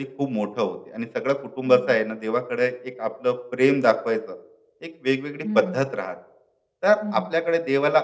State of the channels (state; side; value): identical; both; correlation 1.00